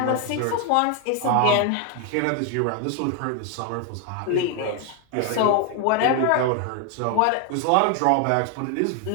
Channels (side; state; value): both; different; correlation 0.01